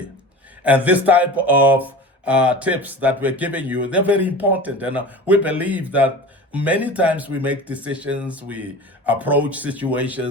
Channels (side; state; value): both; normal; correlation 0.35